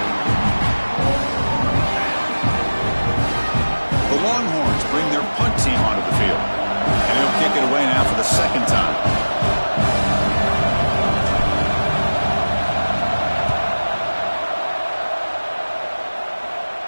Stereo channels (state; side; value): inverted; both; correlation -1.00